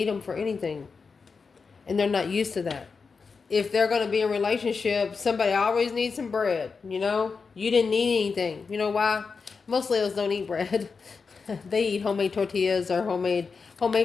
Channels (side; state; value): right; quieter; 5.0 dB